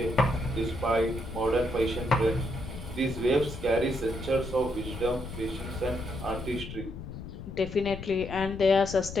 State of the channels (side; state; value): left; noise; rumble, 10 dB below the sound